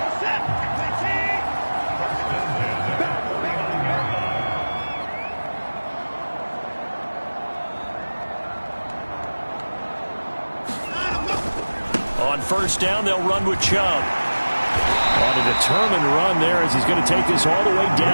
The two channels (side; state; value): both; inverted; correlation -1.00